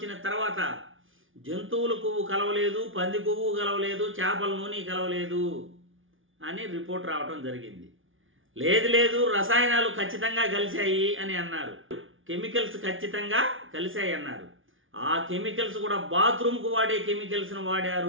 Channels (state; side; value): late; left; 0.57 ms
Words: తర్వాత జంతువుల కొవ్వు కలవలేదు, పంది కొవ్వు కలవలేదు, చేపల నూనె కలవలేదు అని రిపోర్ట్ రావడం జరిగింది. లేదు రసాయనాలు ఖచ్చితంగా కలిశాయి అని అన్నారు. కెమికల్స్ ఖచ్చితంగా కలిశాయి అన్నారు. ఆ కెమికల్స్ కూడా బాత్రూమ్కు వాడే కెమికల్స్ను